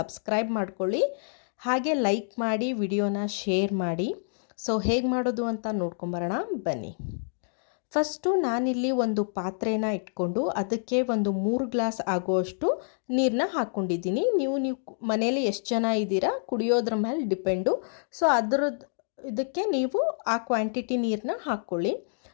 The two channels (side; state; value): right; silent; digital silence